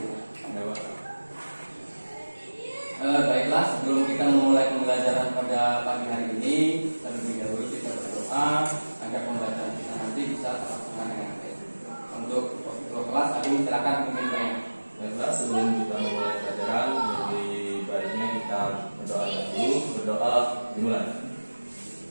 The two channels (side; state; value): both; inverted; correlation -1.00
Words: Ya Pak. Baiklah, sebelum kita memulai pembelajaran pada pagi hari ini, terlebih dahulu kita berdoa agar pembelajaran kita nanti bisa terlaksana dengan baik. Untuk kelas, aku silakan pimpin saya. Baiklah, sebelum kita memulai pelajaran, lebih baiknya kita berdoa dulu. Berdoa dimulai.